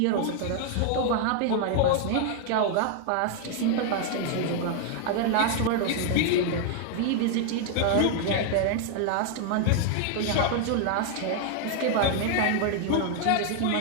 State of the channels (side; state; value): both; different; correlation 0.00